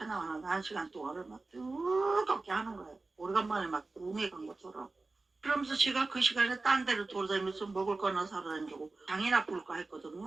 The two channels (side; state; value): left; quieter; 3.5 dB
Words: 1시간 동안을 막 뜨겁게 하는 거예요. 오래간만에 막 웅에 간 것처럼. 그러면서 제가 그 시간에 딴 데를 돌아다니면서 먹을 거나 사러 다니고 장이나 볼까